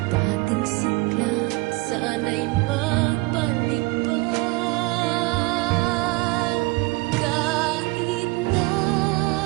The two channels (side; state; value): left; quieter; 24.2 dB